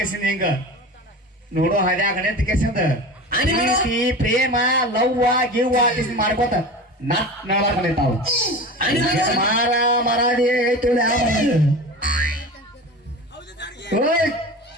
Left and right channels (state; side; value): normal; both; correlation 0.32